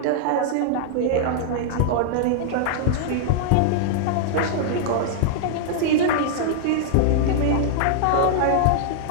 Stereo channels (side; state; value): both; different; correlation -0.01